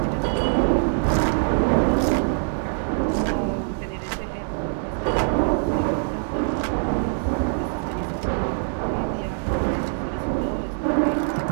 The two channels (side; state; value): left; silent; digital silence